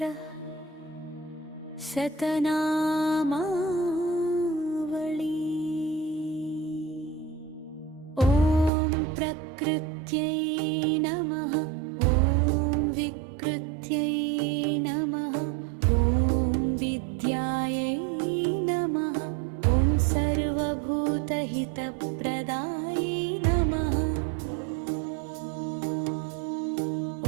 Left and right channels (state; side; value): drops out; left; at 8.7 s